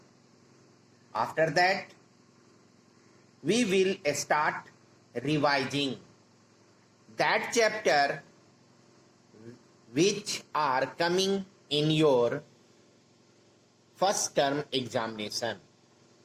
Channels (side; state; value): both; identical; correlation 1.00